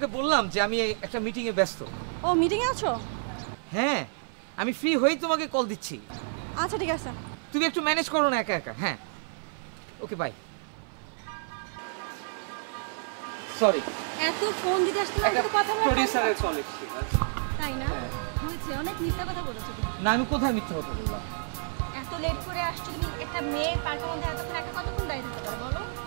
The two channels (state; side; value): silent; left; 58 dB below the other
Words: বললাম যে আমি একটা মিটিং এ ব্যস্ত। ও মিটিং এ আছো? হ্যাঁ, আমি ফ্রি হই তোমাকে কল দিচ্ছি। আচ্ছা ঠিক আছে, তুমি একটু ম্যানেজ করো না একা একা। হ্যাঁ, ওকে বাই। সরি, এত ফোন দিতে আসতে না, একটু কথা বলো। প্রোডিউসারের কল এসেছে। তাই না? হয়েছে, অনেক মিথ্যা কথা বলেছো তুমি। না, আমি কোথায় মিথ্যা কথা বললাম? এত লেট করে আসছো তুমি, একটা মেয়ে পার্কের মধ্যে এতক্ষণ একা কতক্ষণ দাঁড়িয়ে থাকতে পারো বলো?